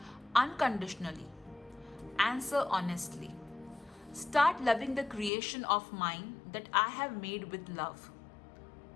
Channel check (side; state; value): right; drops out; at 5.3 s